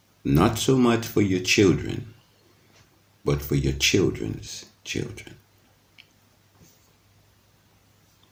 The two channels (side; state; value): both; identical; correlation 1.00